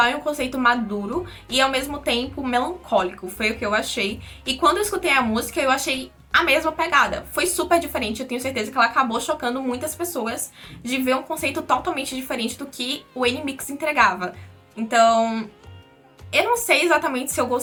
e um conceito maduro e ao mesmo tempo melancólico, foi o que eu achei. E quando eu escutei a música, eu achei a mesma pegada. Foi super diferente, eu tenho certeza que ela acabou chocando muitas pessoas de ver um conceito totalmente diferente do que o NMIXX entregava. Então, eu não sei exatamente se eu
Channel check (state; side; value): identical; both; correlation 1.00